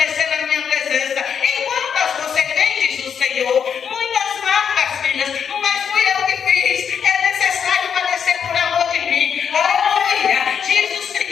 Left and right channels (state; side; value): quieter; right; 7.4 dB